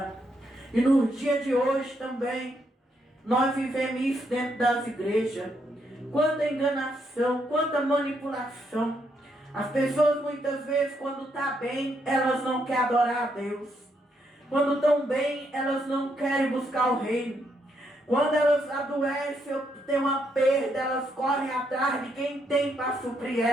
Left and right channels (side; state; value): both; normal; correlation 0.76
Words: E no dia de hoje também, nós vivemos isso dentro das igrejas. Quanta enganação, quanta manipulação. As pessoas muitas vezes, quando estão bem, elas não querem adorar a Deus. Quando estão bem, elas não querem buscar o reino. Quando elas adoecem ou tem uma perda, elas correm atrás de quem tem para suprir